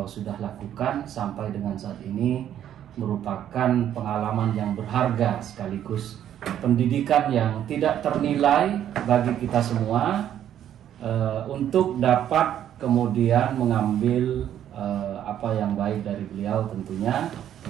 sudah lakukan sampai dengan saat ini merupakan pengalaman yang berharga sekaligus pendidikan yang tidak ternilai bagi kita semua untuk dapat kemudian mengambil apa yang baik dari beliau tentunya.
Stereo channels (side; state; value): left; quieter; 10.6 dB